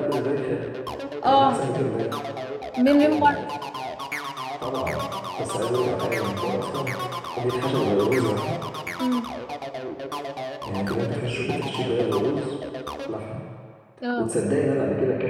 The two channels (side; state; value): both; identical; correlation 1.00